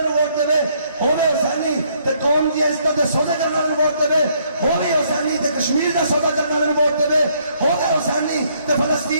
نو ووٹ دے, ہونے حسینی تے قوم دی عزت دے سودے کرنے والے نو ووٹ دے, ہونے حسینی تے کشمیر دا سودا کرنے والے نو ووٹ دے, ہونے حسینی تے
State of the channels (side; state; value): both; inverted; correlation -0.68